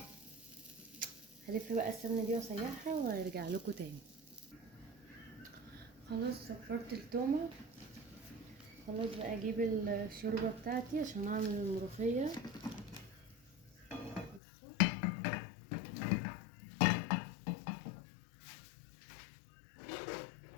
هلف بقى السمنه دي واسيحها وارجع لكم تاني. خلاص صفرت التومه، خلاص بقى اجيب الشوربه بتاعتي عشان اعمل الملوخيه. بصوا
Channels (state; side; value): drops out; right; at 14.4 s